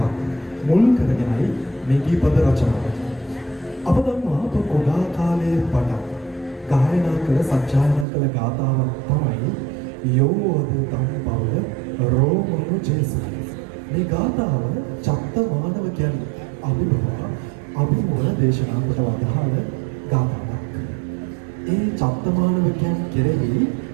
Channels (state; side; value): drops out; left; at 8.1 s